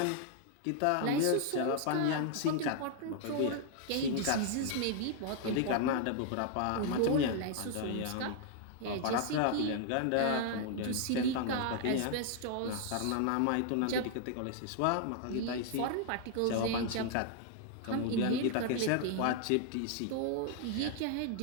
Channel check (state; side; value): different; both; correlation 0.00